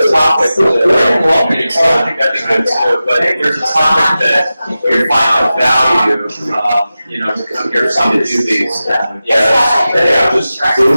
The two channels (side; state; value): both; inverted; correlation -0.94